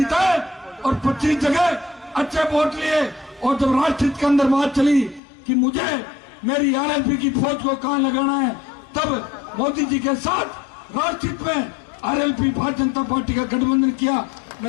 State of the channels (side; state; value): right; drops out; at 5.2 s